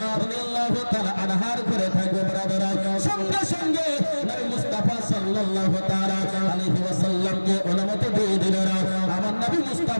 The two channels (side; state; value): both; inverted; correlation -1.00